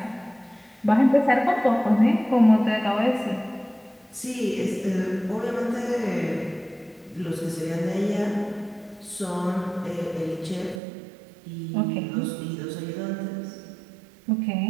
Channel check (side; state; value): left; drops out; at 10.8 s